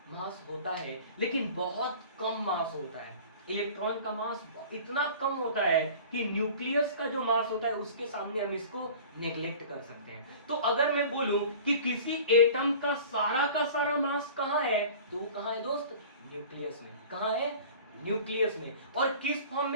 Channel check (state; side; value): inverted; both; correlation -0.42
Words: मास होता है, लेकिन बहुत कम मास होता है। इलेक्ट्रॉन का मास इतना कम होता है कि न्यूक्लियस का जो मास होता है उसके सामने हम इसको नेग्लेक्ट कर सकते हैं। तो अगर मैं बोलूं कि किसी एटम का सारा मास कहाँ है, तो वो कहाँ है दोस्त, न्यूक्लियस में। कहाँ है, न्यूक्लियस में। और किस फॉर्म